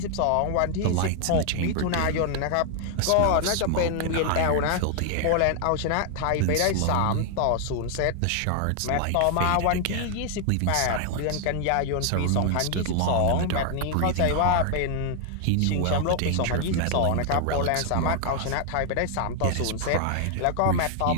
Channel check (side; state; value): both; different; correlation 0.00